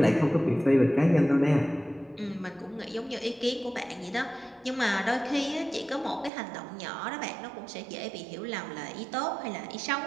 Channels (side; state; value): left; drops out; at 6.3 s